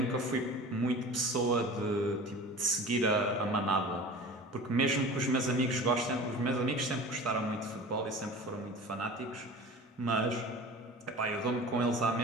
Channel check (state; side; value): normal; both; correlation 0.37